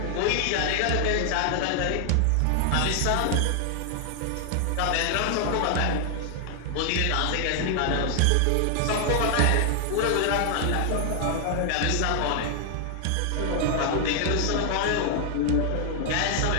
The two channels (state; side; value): different; both; correlation 0.00